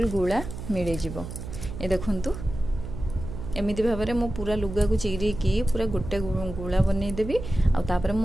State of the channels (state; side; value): noise; right; hum, 9 dB below the sound